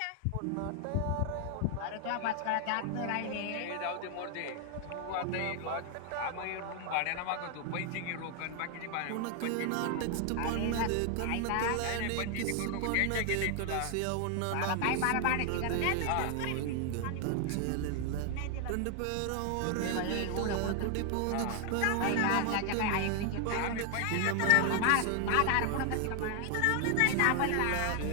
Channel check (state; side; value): different; both; correlation 0.00